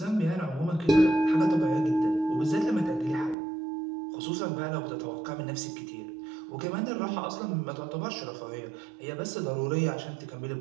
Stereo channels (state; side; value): drops out; left; at 3.4 s